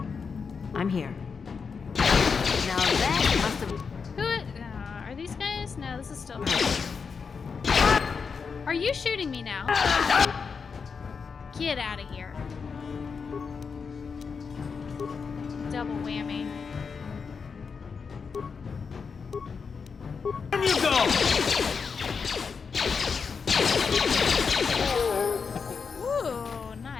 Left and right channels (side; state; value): right; quieter; 5.6 dB